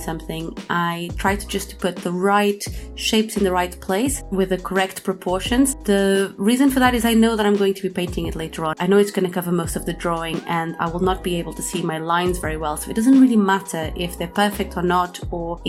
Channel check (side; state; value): both; identical; correlation 1.00